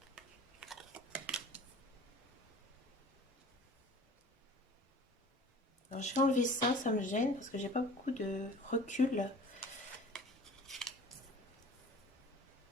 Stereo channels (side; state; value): both; normal; correlation 0.44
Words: Alors, je vais enlever ça, ça me gêne parce que j'ai pas beaucoup de recul.